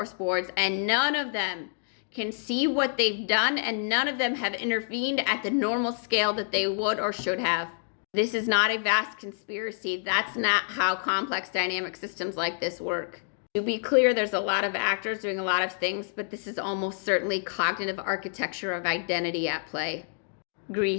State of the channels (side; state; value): right; silent; digital silence